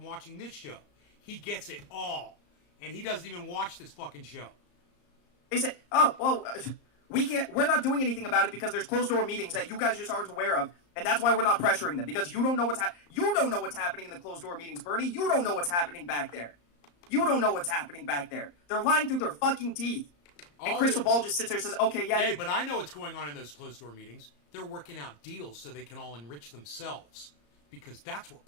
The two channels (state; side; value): late; right; 34 ms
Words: watching this show. He gets it all. And he doesn't even watch this fucking show. They say, we're not doing anything about it because there's closed-door meetings that you guys just aren't aware of, and that's why we're not pressuring them, because you don't know what's happening in the closed-door meetings, Bernie. You don't know what's happening back there. They're lying through their fucking teeth. And Crystal Ball just sits there and says, okay, yeah. Hey, but I know what's going on in those closed-door meetings. They're working out deals so they can all enrich themselves, because that's what